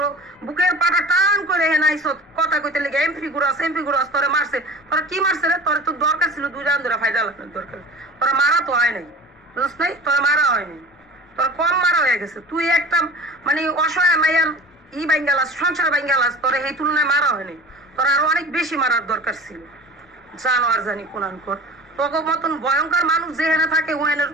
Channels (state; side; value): normal; both; correlation 0.38